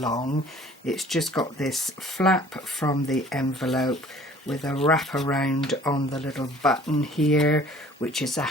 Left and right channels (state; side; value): normal; both; correlation 0.51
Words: It's just got this flap from the envelope with a wrap around on the little button here, which is a